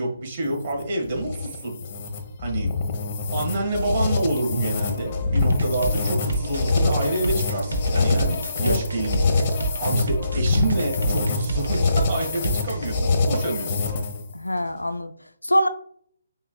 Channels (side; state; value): both; inverted; correlation -0.78